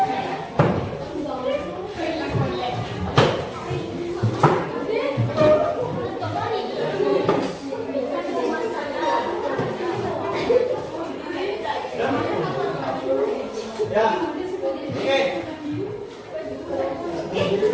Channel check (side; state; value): both; identical; correlation 1.00